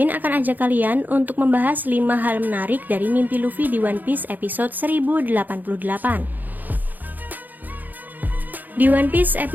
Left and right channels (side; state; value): left; late; 0.085 ms